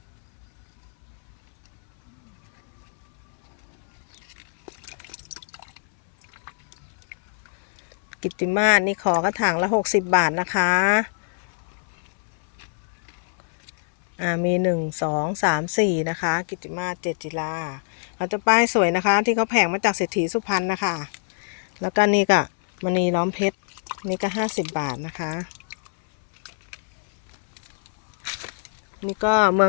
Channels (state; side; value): silent; right; 61 dB below the other